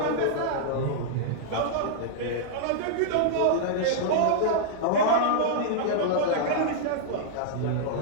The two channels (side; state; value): both; different; correlation -0.02